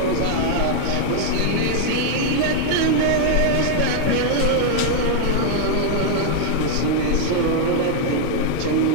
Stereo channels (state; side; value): different; both; correlation 0.00